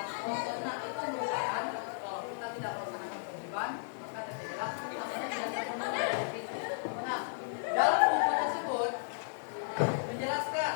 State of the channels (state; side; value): silent; right; 55 dB below the other